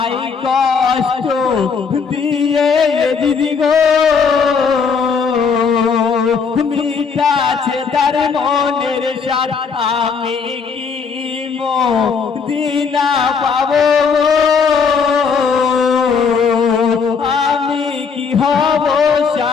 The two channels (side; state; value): right; quieter; 5.6 dB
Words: কষ্ট দিয়ে দিদি গো মিটাছে তার মনের সাথ আমি কি দিনা পাবো আমি কি হব